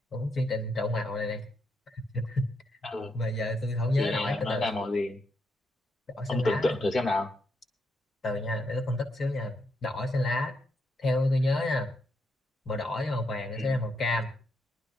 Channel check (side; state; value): both; normal; correlation 0.79